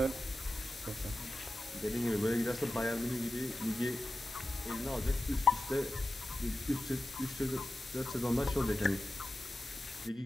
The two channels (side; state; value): both; normal; correlation 0.93